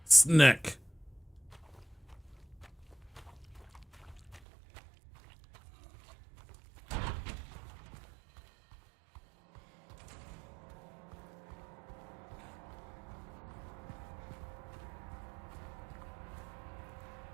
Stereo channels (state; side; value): drops out; left; at 4.4 s